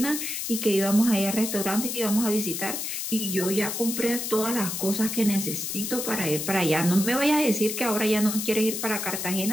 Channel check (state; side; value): noise; left; hiss, 4 dB below the sound